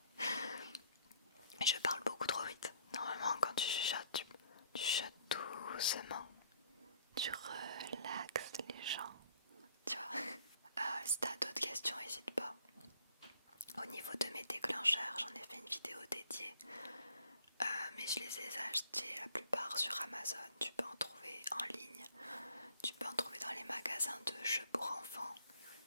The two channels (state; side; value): inverted; both; correlation -0.60